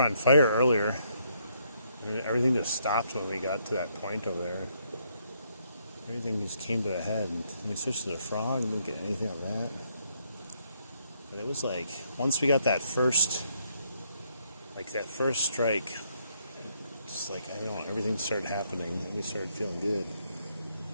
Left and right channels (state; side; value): inverted; both; correlation -0.72